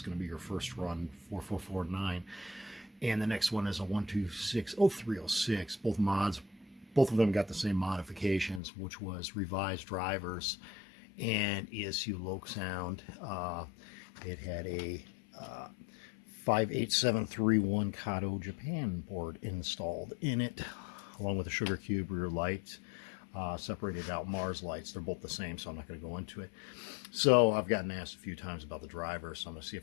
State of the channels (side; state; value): right; drops out; at 8.6 s